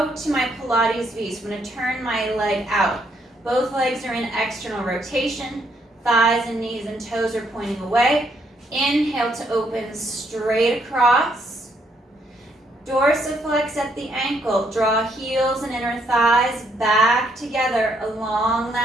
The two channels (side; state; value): both; normal; correlation 0.72